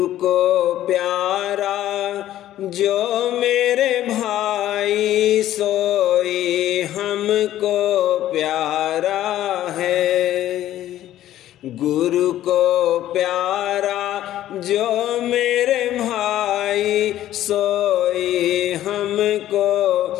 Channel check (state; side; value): quieter; right; 13.0 dB